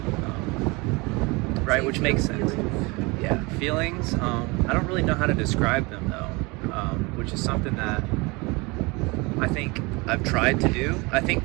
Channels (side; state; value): left; quieter; 26.0 dB